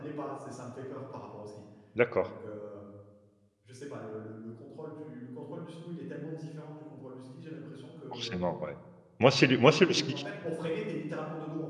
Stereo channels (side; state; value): both; identical; correlation 1.00